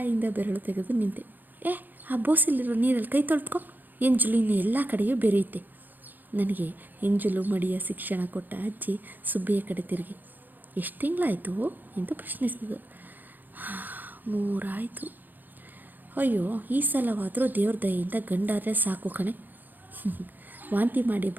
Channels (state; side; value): late; left; 0.087 ms